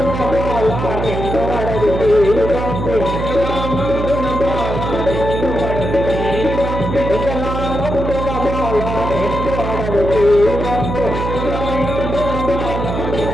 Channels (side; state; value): right; noise; hum, 4 dB below the sound